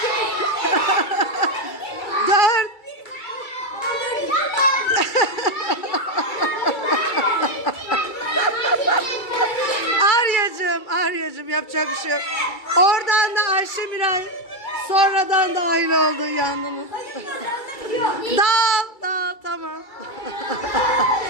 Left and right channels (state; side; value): late; right; 2.3 ms